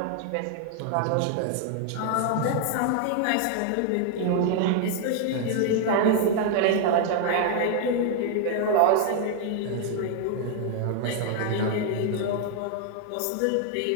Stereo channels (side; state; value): both; different; correlation 0.00